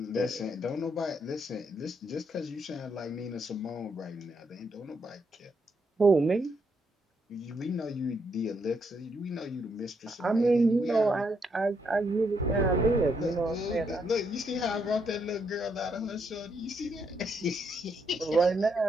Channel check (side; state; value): both; normal; correlation 0.76